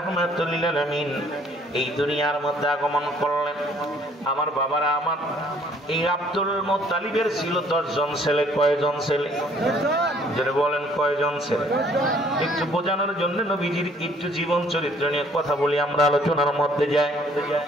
লিল আলামিন এই দুনিয়ার মধ্যে আগমন করলেন। আমার বাবারা, আমার এই আব্দুল মুত্তালিবের ছিল 10 জন ছেলে। কয়জন ছেলে? যারা বলেন কয়জন ছেলে? একটু বোঝানোর জন্য নবীজির একটু জীবন চরিত্র নিয়ে কথা বলি, আমরা আলোচনার মধ্যে যাই।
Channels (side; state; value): both; normal; correlation 0.60